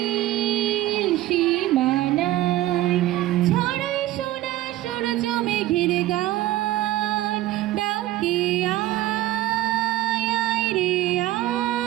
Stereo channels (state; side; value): quieter; left; 15.5 dB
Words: সীমানায় ছড়ায় সোনা সূর্য মেঘের গান ডাকি আয় আয় রে